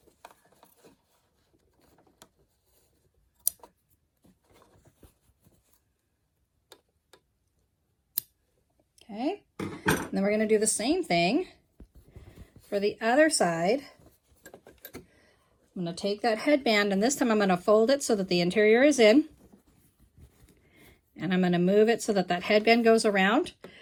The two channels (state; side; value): identical; both; correlation 1.00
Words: Okay, and then we're going to do the same thing for the other side. I'm going to take that headband, and this time I'm going to fold it so that the interior is in. And I'm going to move it so that that headband goes around.